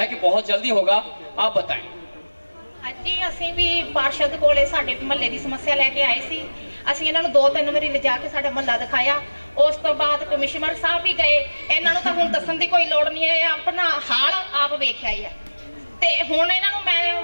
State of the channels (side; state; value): both; inverted; correlation -1.00